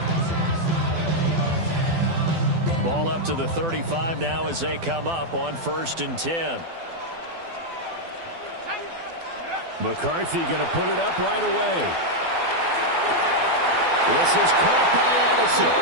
Ball up to the 35 now as they come up on 1st and 10. McCarthy going to put it up right away. This is caught by Addison.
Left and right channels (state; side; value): late; left; 12 ms